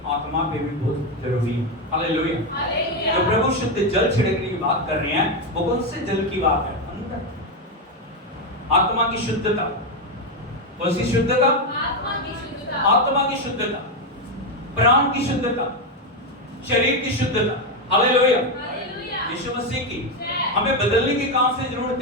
आत्मा पे भी बहुत जरूरी है। हालेलुया। तो प्रभु शुद्ध जल छिड़कने की बात कर रहे हैं, वो कौन से जल की बात है? आत्मा की शुद्धता। कौन सी शुद्धता? आत्मा की शुद्धता, प्राण की शुद्धता, शरीर की शुद्धता। हालेलुया। यीशु मसीह की हमें बदलने की कहां से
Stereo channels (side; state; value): both; normal; correlation 0.08